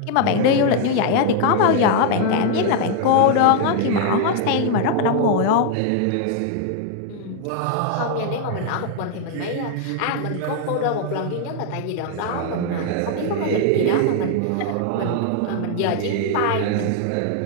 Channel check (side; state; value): both; different; correlation 0.00